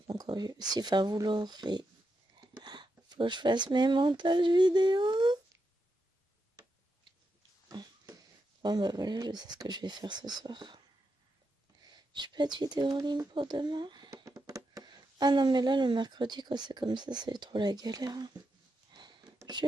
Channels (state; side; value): normal; both; correlation 0.85